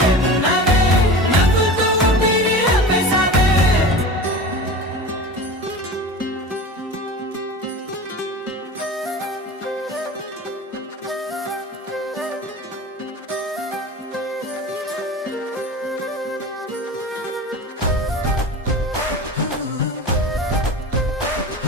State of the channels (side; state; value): both; normal; correlation 0.33